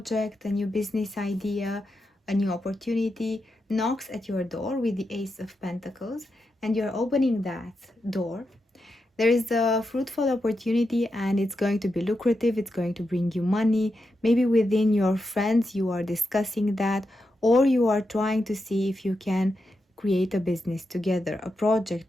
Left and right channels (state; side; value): normal; both; correlation 0.87